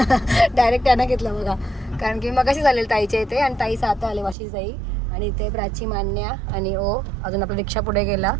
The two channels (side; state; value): left; drops out; at 4.4 s